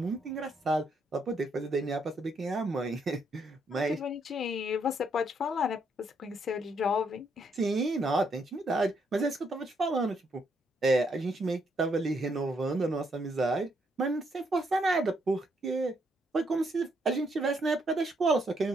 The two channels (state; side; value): normal; both; correlation 0.74